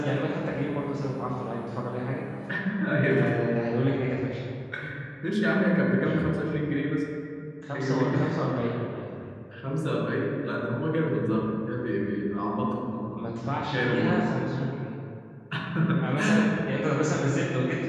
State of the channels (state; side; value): identical; both; correlation 1.00